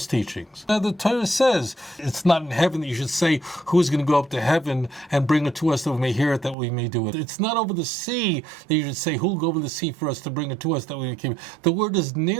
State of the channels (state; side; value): drops out; left; at 6.6 s